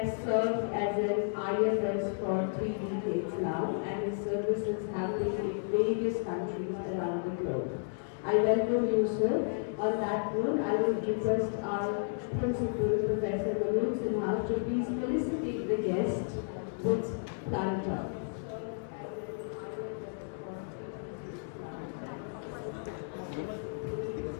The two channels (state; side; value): silent; right; digital silence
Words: served as an IFS for 3 decades now, and his services have been in various countries around the globe. I welcome you, sir. On that note, I will request our principal, Professor Manoj Sinha, to please felicitate the guest with Planta.